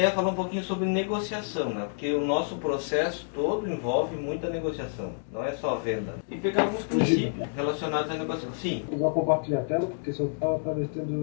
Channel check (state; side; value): silent; right; digital silence